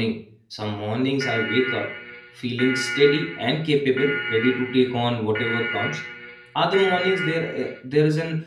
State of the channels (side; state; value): both; identical; correlation 1.00